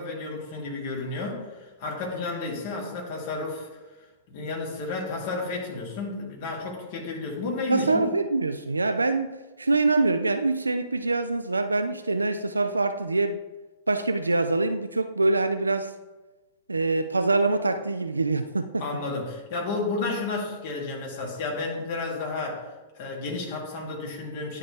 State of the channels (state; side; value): inverted; both; correlation -0.71